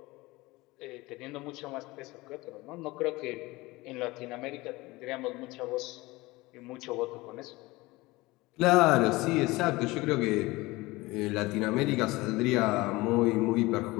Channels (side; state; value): right; quieter; 21.2 dB